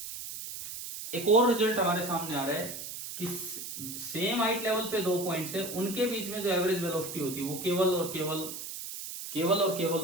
एक और रिजल्ट हमारे सामने आ रहा है कि सेम हाइट लेवल पे दो पॉइंट्स है, उनके बीच में जो एवरेज वेलोसिटी होती है वो केवल और केवल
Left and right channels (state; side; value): noise; right; hiss, 8 dB below the sound